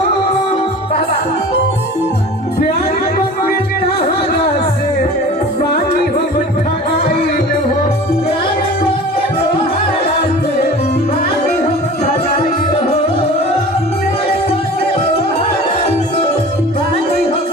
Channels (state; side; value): normal; both; correlation 0.40